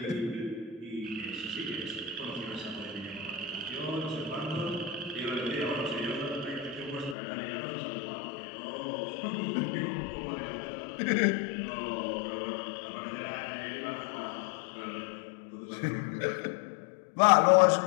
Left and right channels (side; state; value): right; drops out; at 7.2 s